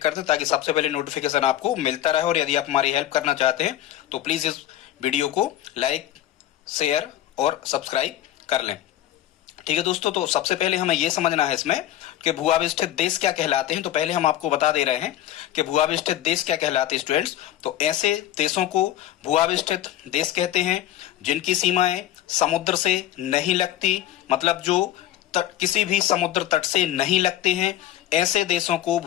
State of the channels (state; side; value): quieter; right; 12.8 dB